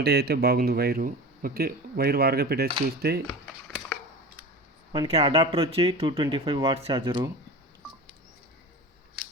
అయితే బాగుంది వైరు. ఓకే, వైర్ వారుగా పెట్టేసి చూస్తే మనకి అడాప్టర్ వచ్చి 225 వాట్స్ ఛార్జరు.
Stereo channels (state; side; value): normal; both; correlation 0.33